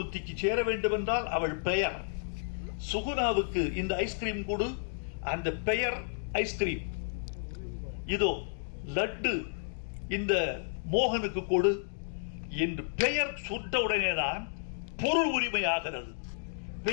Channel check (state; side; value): silent; right; digital silence